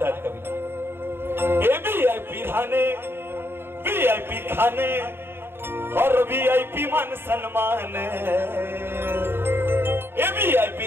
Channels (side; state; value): left; late; 0.11 ms